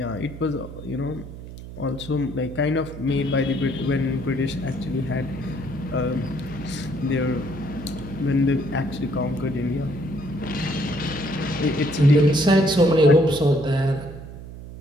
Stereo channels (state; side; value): noise; right; hum, 13 dB below the sound